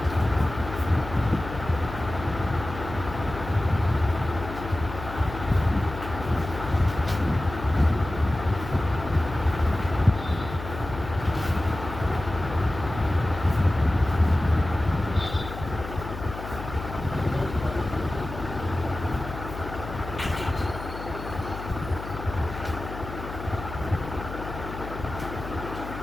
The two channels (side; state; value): left; noise; hum, 10 dB below the sound